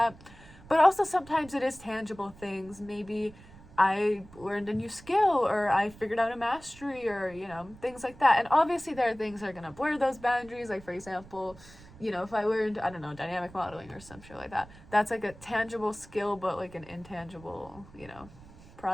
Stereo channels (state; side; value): noise; right; rumble, 21 dB below the sound